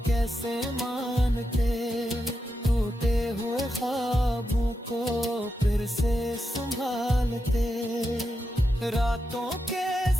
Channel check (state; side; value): normal; both; correlation 0.87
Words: कैसे मानते, टूटे हुए ख्वाबों को फिर से संभालते। रातों के